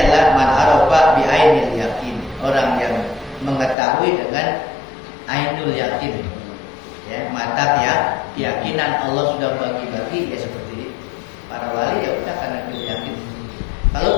adalah man arafa bi ainil yakin, orang yang mengetahui dengan ainul yakin. Ya, mata keyakinan Allah sudah bagi-bagi, ya seperti para wali, ya udah karena dia yakin.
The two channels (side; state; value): right; drops out; at 3.8 s